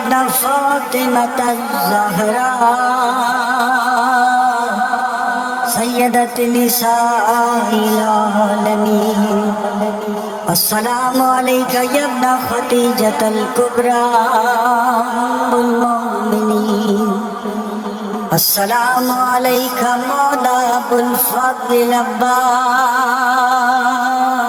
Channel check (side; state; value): both; identical; correlation 1.00